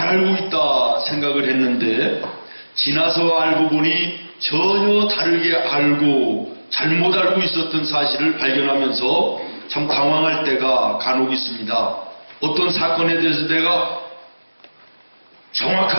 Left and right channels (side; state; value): both; inverted; correlation -1.00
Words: 알고 있다 생각을 했는데 지나서 알고 보니 전혀 다르게 알고 잘못 알고 있었던 사실을 발견하면서 참 당황할 때가 간혹 있습니다. 어떤 사건에 대해서 내가